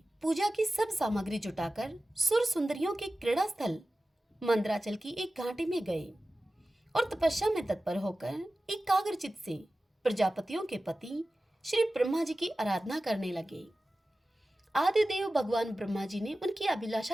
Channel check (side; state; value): both; normal; correlation 0.95